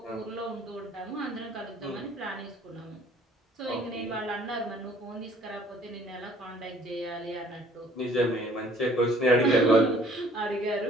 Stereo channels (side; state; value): both; normal; correlation 0.57